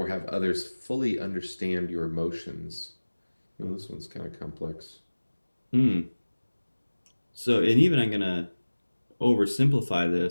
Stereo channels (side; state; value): both; inverted; correlation -1.00